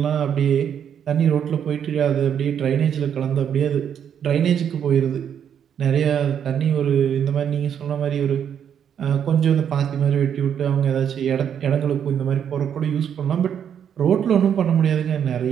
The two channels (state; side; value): quieter; left; 8.6 dB